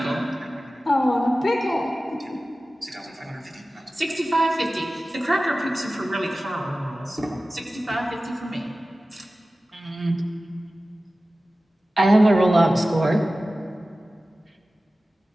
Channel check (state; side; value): normal; both; correlation 0.96